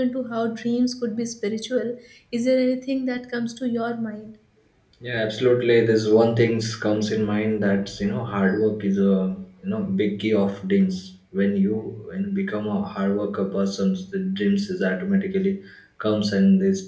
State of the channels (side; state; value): both; identical; correlation 1.00